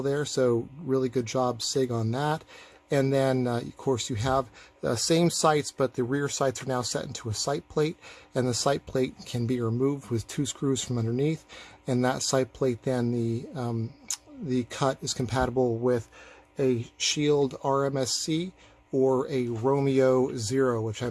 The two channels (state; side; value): identical; both; correlation 1.00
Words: there, so really good job SIG on that. And then, of course, you have the same sights, but the rear sights are now set into a sight plate, and the sight plate can be removed with 2 screws from underneath. And that sight plate, then the cut is compatible with a Shield RMSC or a Romeo Zero, which